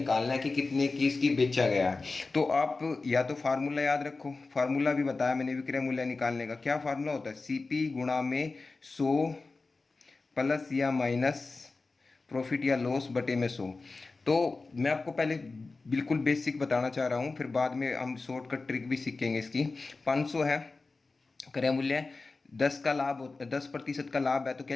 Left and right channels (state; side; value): quieter; right; 3.8 dB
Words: है कि कितने की इसकी बेचा गया है। तो आप या तो फार्मूला याद रखो, फार्मूला भी बताया मैंने विक्रय मूल्य निकालने का। क्या फार्मूला होता है, सीपी गुणा में 100 प्लस या माइनस प्रॉफिट या लॉस बटे में 100। तो मैं आपको पहले बिल्कुल बेसिक बताना चाह रहा हूँ, फिर बाद में हम शॉर्टकट ट्रिक भी सीखेंगे इसकी। 500 है क्रय मूल्य, 10 का लाभ 10% का लाभ है, तो